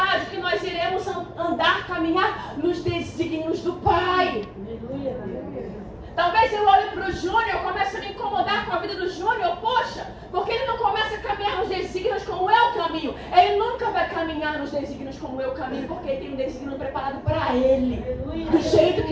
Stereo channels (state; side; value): identical; both; correlation 1.00